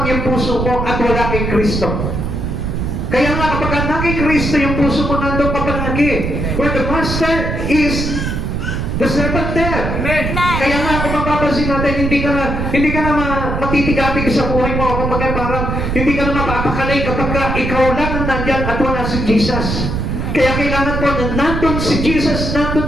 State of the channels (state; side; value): noise; right; rumble, 2 dB below the sound